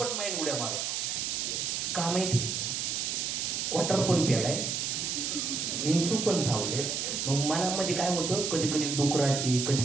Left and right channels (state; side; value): noise; right; hiss, 1 dB below the sound